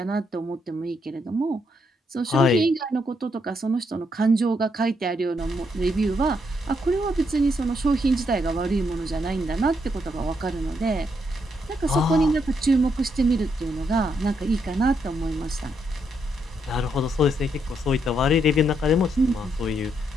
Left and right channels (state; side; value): normal; both; correlation 0.77